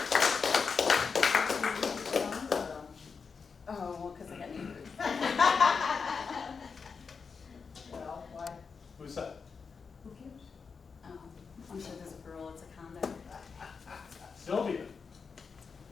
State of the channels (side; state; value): right; quieter; 5.4 dB